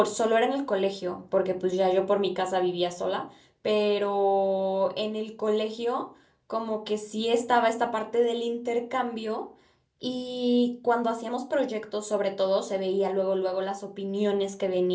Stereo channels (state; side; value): identical; both; correlation 1.00